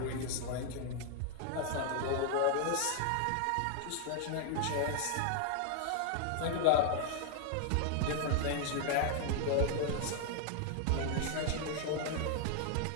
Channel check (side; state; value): both; different; correlation 0.00